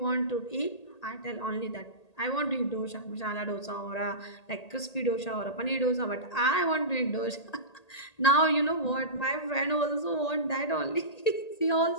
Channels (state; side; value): late; right; 1.8 ms